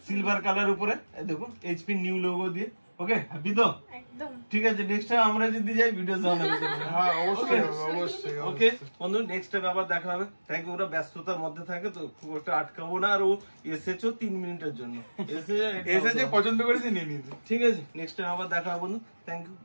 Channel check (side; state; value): both; inverted; correlation -1.00